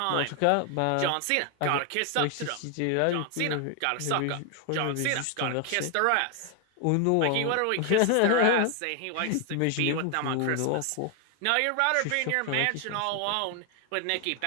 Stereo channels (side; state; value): both; different; correlation 0.01